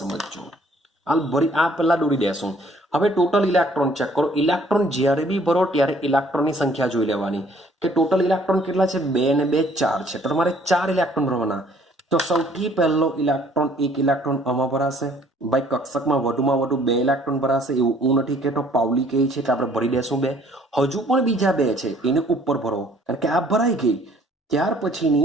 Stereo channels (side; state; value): both; normal; correlation 0.59